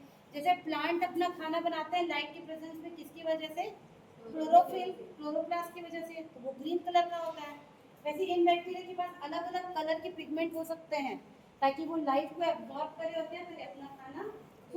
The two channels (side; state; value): both; identical; correlation 1.00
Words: जैसे प्लांट अपना खाना बनाते हैं लाइट की प्रेजेंस में, किसकी वजह से? क्लोरोफिल, क्लोरोप्लास्ट की वजह से, तो वो ग्रीन कलर का होता है। वैसे इन बैक्टीरिया के पास अलग अलग कलर के पिगमेंट हो सकते हैं, ताकि वो लाइट को एब्जॉर्ब करे और क्या करे? अपना खाना